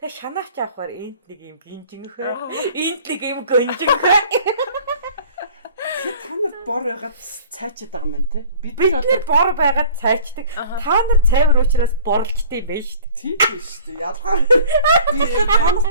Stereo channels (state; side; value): inverted; both; correlation -0.48